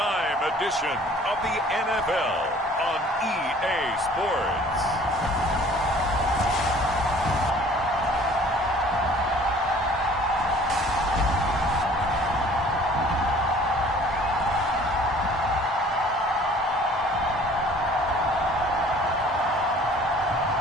edition of the NFL on EA Sports.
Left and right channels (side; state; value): both; normal; correlation 0.52